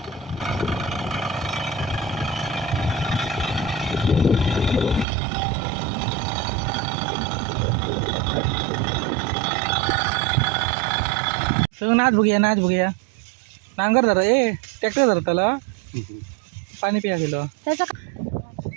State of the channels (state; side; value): drops out; left; at 5.1 s